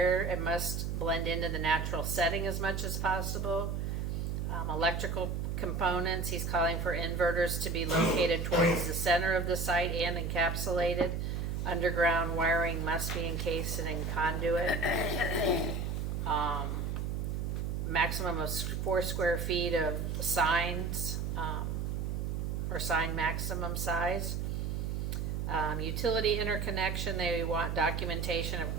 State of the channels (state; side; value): noise; right; hum, 1 dB below the sound